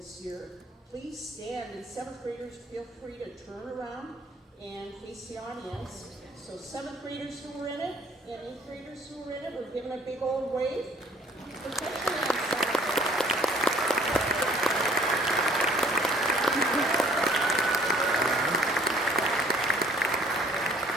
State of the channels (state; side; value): normal; both; correlation 0.56